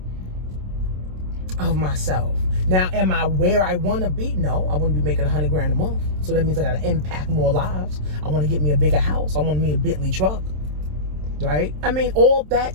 of myself. Now, am I where I want to be? No, I want to be making $100,000 a month. So that means I got to impact more lives. I want to get me a bigger house. I want me a Bentley truck, right? I mean, all that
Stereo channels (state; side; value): late; left; 27 ms